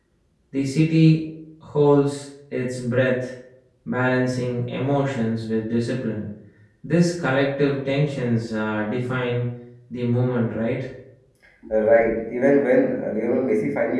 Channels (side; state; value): both; identical; correlation 1.00